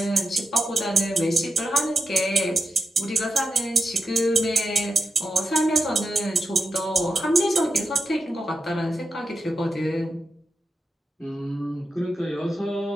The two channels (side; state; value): both; normal; correlation 0.88